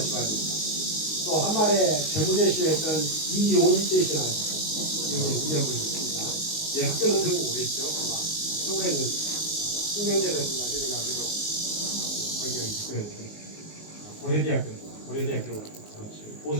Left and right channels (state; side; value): late; right; 19 ms